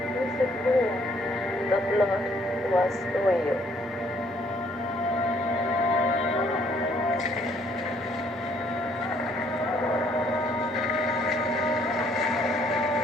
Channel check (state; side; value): normal; both; correlation 0.65